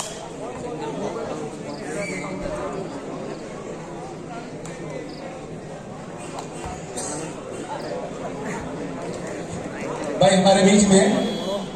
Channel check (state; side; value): identical; both; correlation 1.00